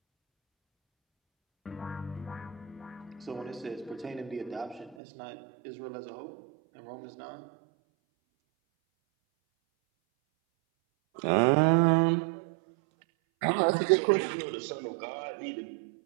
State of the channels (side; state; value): left; drops out; at 5.0 s